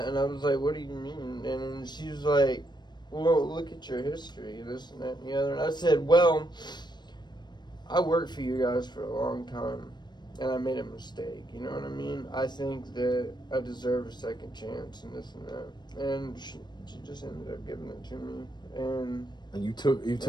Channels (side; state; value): right; late; 0.21 ms